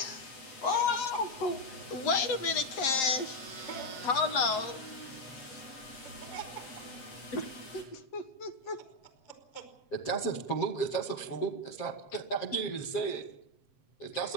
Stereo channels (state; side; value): late; right; 7.6 ms